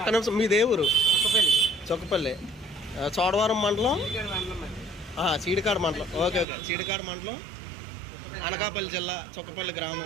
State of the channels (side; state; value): left; drops out; at 6.5 s